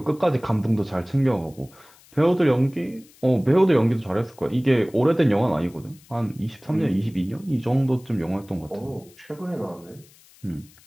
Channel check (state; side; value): noise; left; hiss, 27 dB below the sound